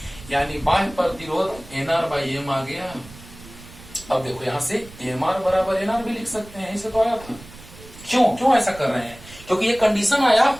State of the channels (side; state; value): right; noise; rumble, 19 dB below the sound